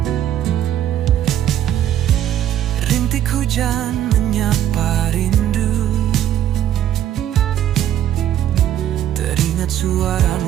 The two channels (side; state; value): left; quieter; 11.2 dB